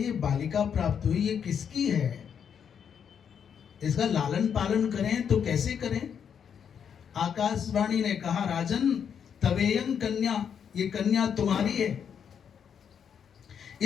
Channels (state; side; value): quieter; right; 7.7 dB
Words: बालिका प्राप्त हुई, ये किसकी है, इसका लालन पालन करें तो कैसे करें। आकाशवाणी ने कहा राजन तवेयं कन्या, ये कन्या तुम्हारी है,